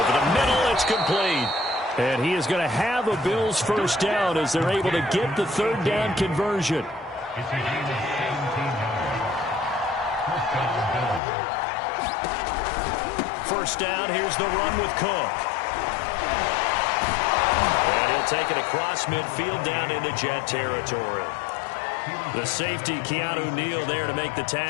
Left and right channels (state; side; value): drops out; right; at 11.2 s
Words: the middle, it's complete. And he is going to have a Bills first down as they're able to get the third down conversion. First down, here's the run with Cook. And he'll take it across midfield down into Jet territory. The safety, Keanu Neal, there to make the